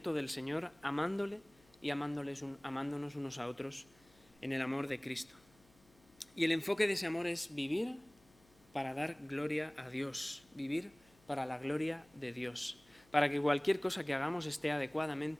del Señor, amándole y amándonos unos a otros en el amor de Cristo. Y el enfoque de ese amor es vivir para dar gloria a Dios, vivir para la gloria de Dios, para que cualquier cosa que hagamos esté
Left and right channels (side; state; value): left; noise; hum, 30 dB below the sound